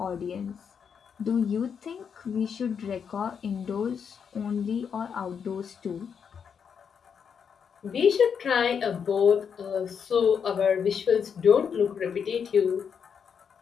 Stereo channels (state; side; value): quieter; right; 7.0 dB